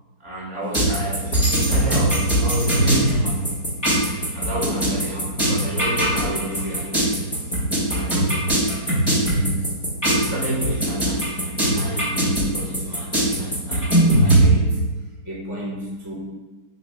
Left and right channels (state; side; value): late; right; 4.4 ms